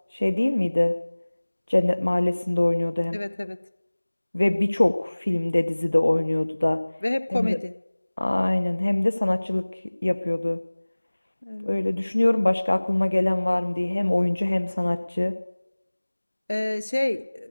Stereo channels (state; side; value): inverted; both; correlation -1.00